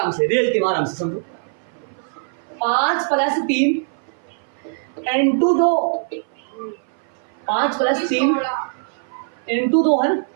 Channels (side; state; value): left; silent; 58 dB below the other